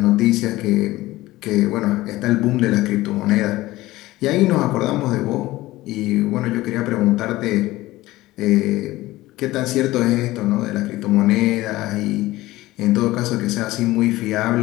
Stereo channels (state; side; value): quieter; right; 17.8 dB